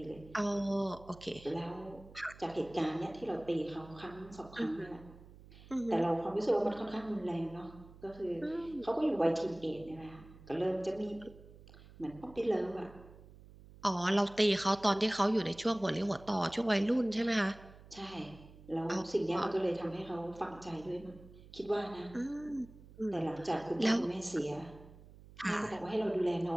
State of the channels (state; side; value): noise; right; hum, 20 dB below the sound